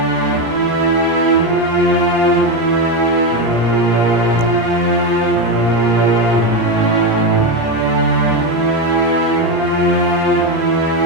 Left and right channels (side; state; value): left; late; 17 ms